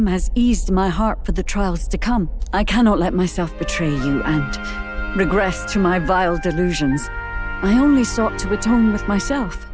has eased my heart for the trials to come. I cannot let myself betray you and regress to my vile delusions. I only sought to atone with myself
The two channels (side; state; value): both; identical; correlation 1.00